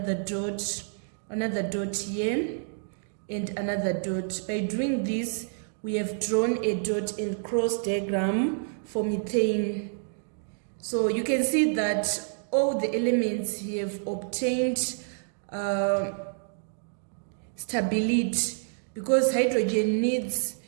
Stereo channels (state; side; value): silent; left; digital silence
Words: dot here, and another dot. By doing this, we have drawn a dot and cross diagram for methane. So you can see that all the elements have obtained stability, because hydrogen needs